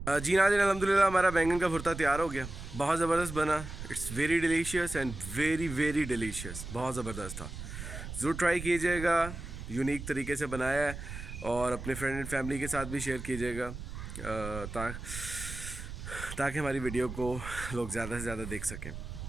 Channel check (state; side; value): noise; right; rumble, 9 dB below the sound